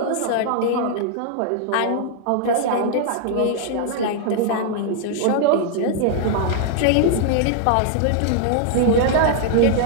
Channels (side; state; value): both; different; correlation 0.00